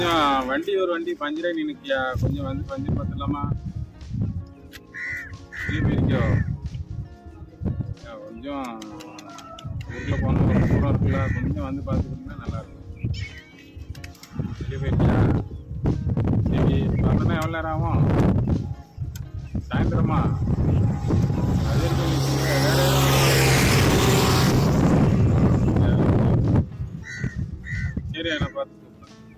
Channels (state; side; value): identical; both; correlation 1.00